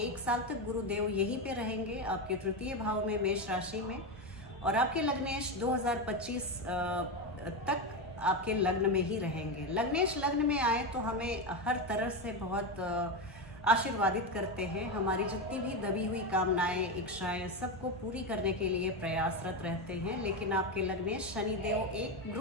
साल तक गुरुदेव यहीं पे रहेंगे आपके तृतीय भाव में, मेष राशि में। और आपके लग्नेश 2025 तक आपके लग्न में ही रहेंगे। लग्नेश लग्न में आए तो हमें हर तरह से बहुत आशीर्वादित करते हैं। हमारी जितनी भी दबी हुई कामनाएं, इच्छाएं, सबको पूरी करने के लिए प्रयासरत रहते हैं। लेकिन आपके लग्नेश शनिदेव एक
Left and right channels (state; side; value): normal; both; correlation 0.13